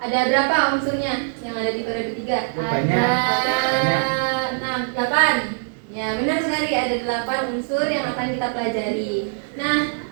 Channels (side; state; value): left; silent; 63 dB below the other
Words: Ada berapa unsurnya yang ada di periode 3? Banyak. Ada 6, 8. Ya, benar sekali, ada 8 unsur yang akan kita pelajari. Nah,